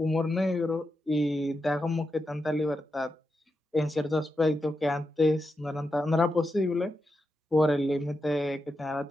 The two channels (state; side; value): normal; both; correlation 0.87